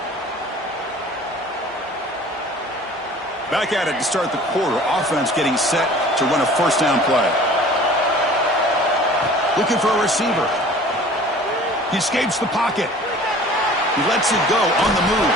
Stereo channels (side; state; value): both; normal; correlation 0.46